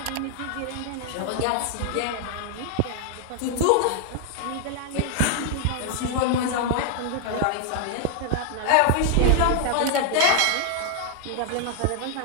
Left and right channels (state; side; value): different; both; correlation 0.00